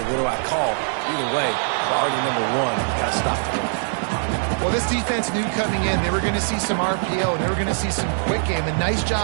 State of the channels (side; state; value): left; silent; 64 dB below the other